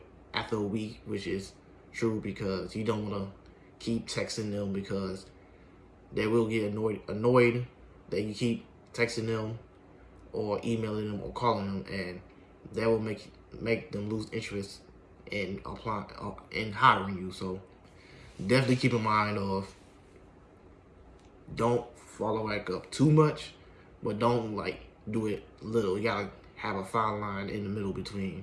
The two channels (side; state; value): both; identical; correlation 1.00